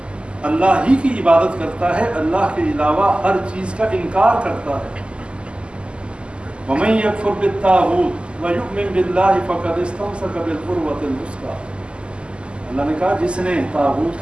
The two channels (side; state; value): left; late; 0.051 ms